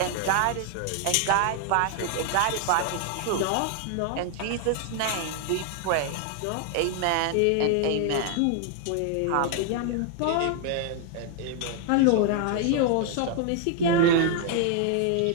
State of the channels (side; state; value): both; different; correlation 0.00